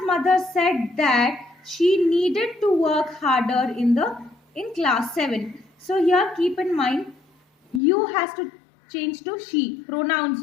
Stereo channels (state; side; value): drops out; right; at 7.8 s